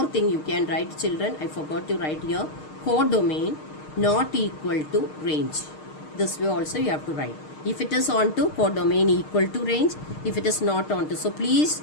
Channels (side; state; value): right; late; 6.5 ms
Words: thing you can write, children. I forgot to write here. Codomain not equal to range. This way also you have to write. If it is onto, codomain equal to range. If it is not onto. So please